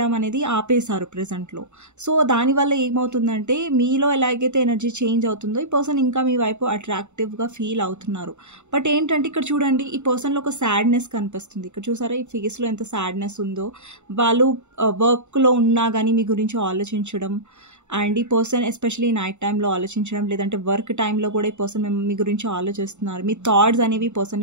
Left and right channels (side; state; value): left; late; 0.83 ms